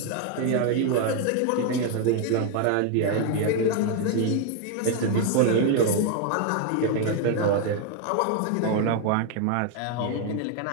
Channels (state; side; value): different; both; correlation 0.01